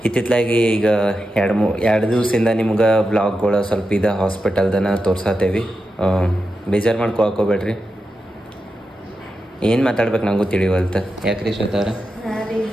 ಇತ್ತಿತ್ತಲಾಗಿ ಈಗ 2 ದಿವಸದಿಂದ ನಿಮ್ಗೆ ಬ್ಲಾಗ್ಗಳು ಸ್ವಲ್ಪ ಇದೆ ಹಾಸ್ಪಿಟಲ್ದನ ತೋರ್ಸತ್ತೇವಿ. ಬೇಜಾರು ಮಾಡ್ಕೊಬೇಡ್ರಿ. ಏನು ಮಾತಾಡ್ಬೇಕು ನಂಗೂ ತಿಳಿವಲ್ತ. ಯಾಕ್ರಿ ಶ್ವೇತಾರ?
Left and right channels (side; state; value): both; normal; correlation 0.89